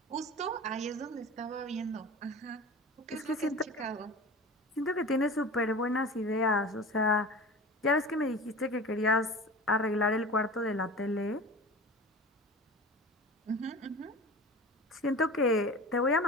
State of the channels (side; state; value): both; normal; correlation 0.35